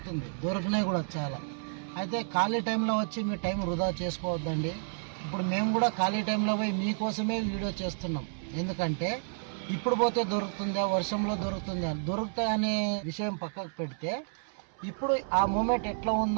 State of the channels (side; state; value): left; silent; 57 dB below the other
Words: దొరికినాయి కూడా చాలా. అయితే ఖాళీ టైంలో వచ్చి మీ టైం వృధా చేసుకోవద్దండి. ఇప్పుడు మేము కూడా ఖాళీ టైంలో పోయి మీకోసమే వీడియో చేస్తున్నాం. ఎందుకంటే ఇప్పుడు పోతే దొరుకుతుందా, వర్షంలో దొరుకుతాయి అనే విషయం పక్కకు పెడితే ఇప్పుడు ఆ మూమెంట్ ఎట్లా